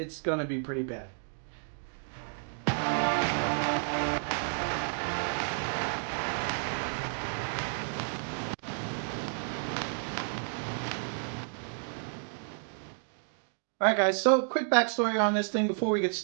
going to be pretty bad. Alright guys, so quick backstory on this thing before we get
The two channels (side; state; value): left; silent; 57 dB below the other